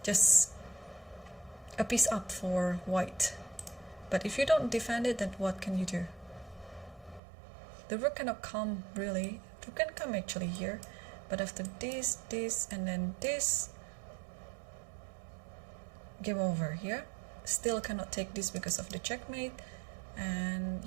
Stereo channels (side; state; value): left; drops out; at 7.2 s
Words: just a piece up for white. But if you don't defend it, then what can you do? The rook cannot come, really. Rook can come actually here, but after this, and then this, game over here. Still cannot take this because of the checkmate, and